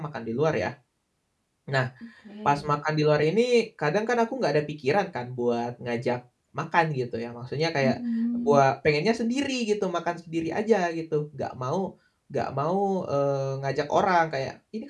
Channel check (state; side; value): identical; both; correlation 1.00